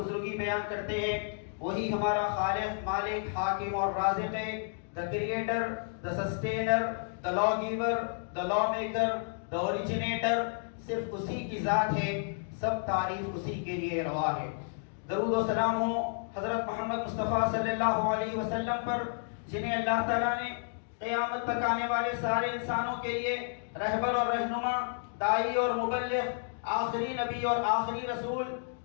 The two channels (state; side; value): silent; right; digital silence